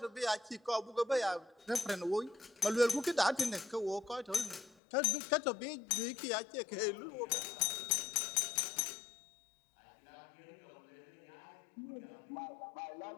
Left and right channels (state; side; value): drops out; right; at 4.8 s